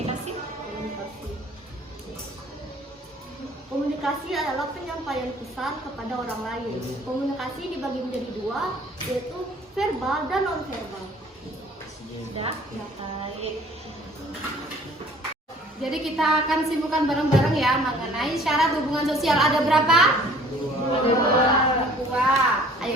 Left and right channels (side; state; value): both; normal; correlation 0.53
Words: Komunikasi adalah penyampaian pesan kepada orang lain. Komunikasi dibagi menjadi dua, yaitu verbal dan non-verbal. Sudah, ya baik. Jadi kita akan simpulkan bareng-bareng ya mengenai syarat hubungan sosial. Ada berapa? Dua.